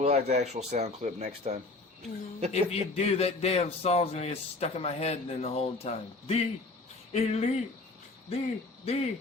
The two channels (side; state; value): right; quieter; 3.4 dB